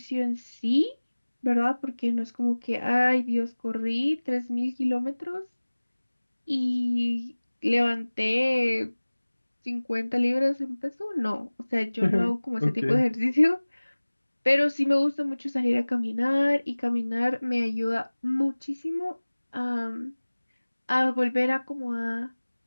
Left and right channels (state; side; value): inverted; both; correlation -1.00